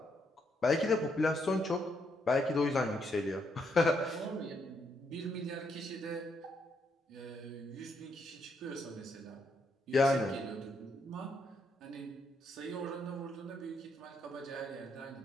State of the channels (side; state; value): both; normal; correlation 0.76